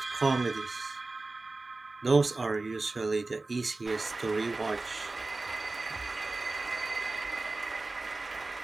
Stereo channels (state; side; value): quieter; left; 3.3 dB